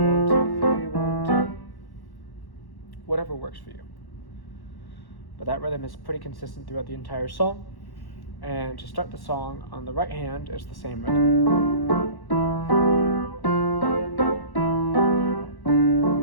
2, 3, 1, 2. Whatever works for you. But that rhythm is pretty consistent throughout the entire song. And to start the song on the right hand, it's the same rhythm.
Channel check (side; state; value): right; late; 1.1 ms